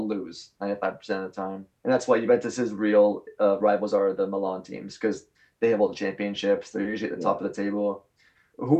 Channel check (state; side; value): identical; both; correlation 1.00